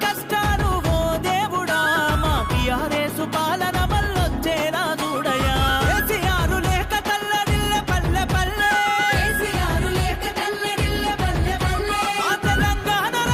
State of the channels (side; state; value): both; identical; correlation 1.00